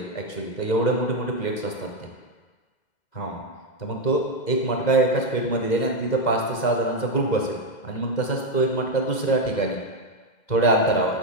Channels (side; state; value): right; late; 2.0 ms